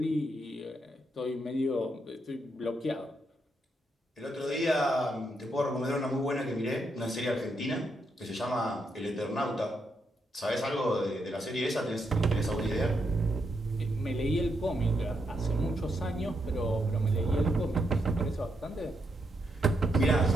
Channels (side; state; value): both; normal; correlation 0.80